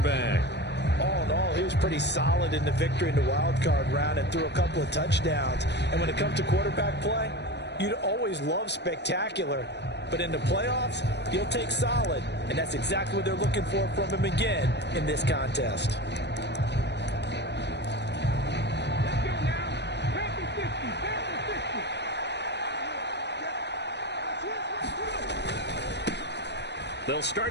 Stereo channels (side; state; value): right; late; 0.50 ms